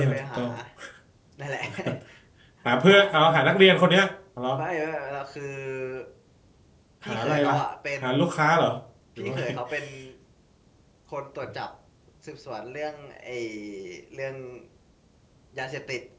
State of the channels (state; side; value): identical; both; correlation 1.00